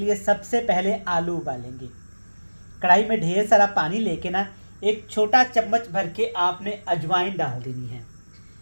लिए सबसे पहले आलू उबालेंगे। कढ़ाई में ढेर सारा पानी लेके ना एक छोटा चम्मच भर के आपने अजवाइन डाल देनी है।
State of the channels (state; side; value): inverted; both; correlation -1.00